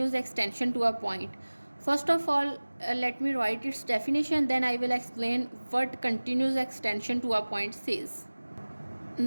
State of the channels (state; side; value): inverted; both; correlation -1.00